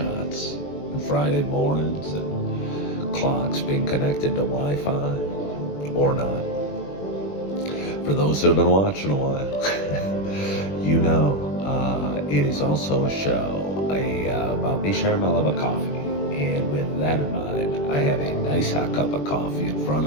and Friday mornings and clocks being connected to Wi-Fi or not. For those that have been watching a while, you know it is also a show about me sharing my love of coffee. And with that in mind, I have a nice hot cup of coffee in front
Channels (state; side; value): late; right; 21 ms